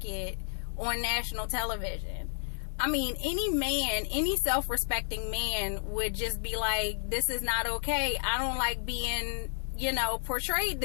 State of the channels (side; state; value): right; silent; digital silence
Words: on national television. I mean, any man, any self-respecting man would just be like, this is not okay. I don't like being, portrayed